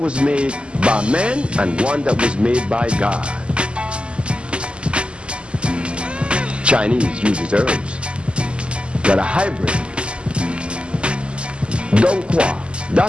made by man and one that was made by God. Chinese uses herbs that are hybrid. Dongqua,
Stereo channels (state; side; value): late; left; 0.052 ms